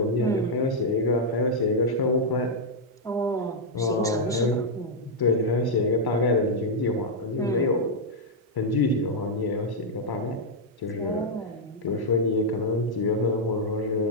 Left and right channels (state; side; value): normal; both; correlation -0.04